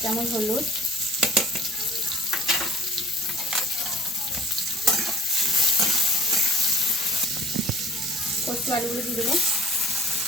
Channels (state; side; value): normal; both; correlation 0.52